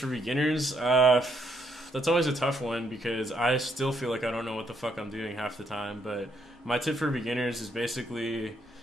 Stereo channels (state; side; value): normal; both; correlation 0.74